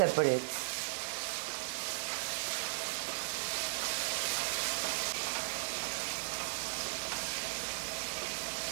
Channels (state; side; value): silent; left; 53 dB below the other